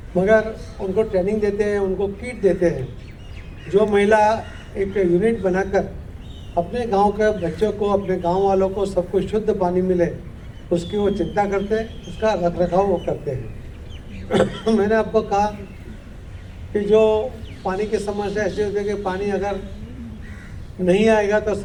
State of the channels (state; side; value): identical; both; correlation 1.00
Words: मगर उनको ट्रेनिंग देते हैं, उनको किट देते हैं। जो महिला एक यूनिट बनाकर अपने गांव के बच्चों को, अपने गांव वालों को सबको शुद्ध पानी मिले, उसकी वो चिंता करते हैं, उसका रख रखाव वो करते हैं। मैंने आपको कहा कि जो पानी की समस्या ऐसी होती है कि पानी अगर नहीं आएगा तो